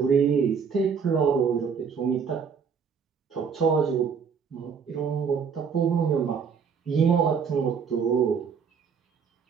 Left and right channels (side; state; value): left; quieter; 6.3 dB